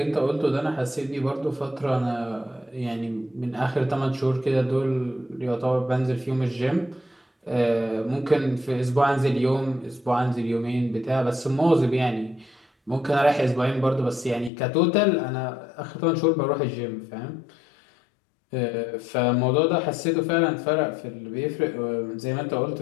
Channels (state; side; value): drops out; right; at 14.5 s